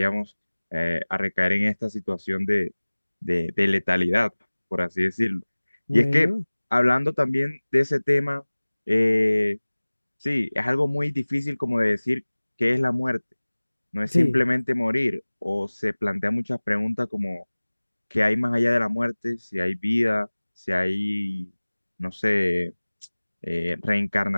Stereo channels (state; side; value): inverted; both; correlation -1.00